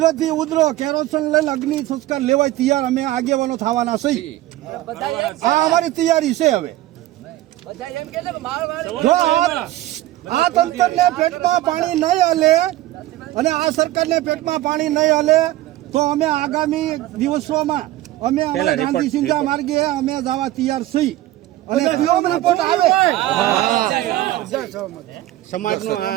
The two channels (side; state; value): left; quieter; 15.7 dB